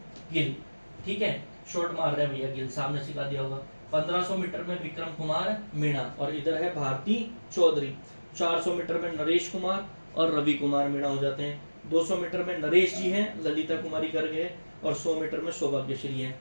गिल। ठीक है, शॉर्ट मार रहे हैं भैया गिल, सामने सिखा दिया होगा। 1500 मीटर में विक्रम कुमार मीणा और इधर है भारती चौधरी। 400 मीटर में नरेश कुमार और रवि कुमार मीणा हो जाते हैं। 200 मीटर में नरेश जी हैं, ललिता कुमारी कर गए, और 100 मीटर में सौभाग्यश्री है।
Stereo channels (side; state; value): both; inverted; correlation -1.00